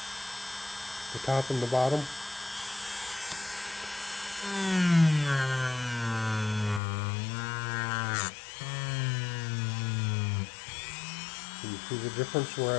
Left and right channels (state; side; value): drops out; right; at 6.8 s